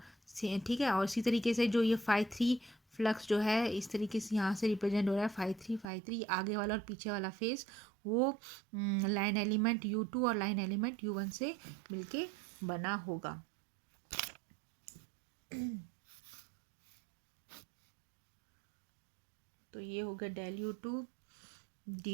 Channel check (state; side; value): drops out; left; at 5.9 s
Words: ठीक है। और इसी तरीके से जो ये फाई थ्री फ्लक्स जो है इस तरीके से यहाँ से रिप्रेजेंट हो रहा है, फाई थ्री आगे वाला और पीछे वाला फेस वो लाइन एलिमेंट U2 और लाइन एलिमेंट U1 से मिलके बना होगा। तो ये हो गया del U2